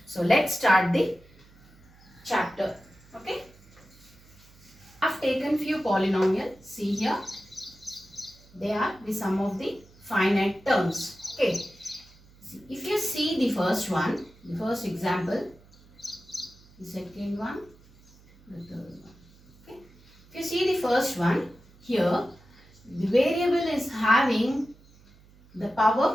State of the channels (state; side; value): noise; right; hum, 26 dB below the sound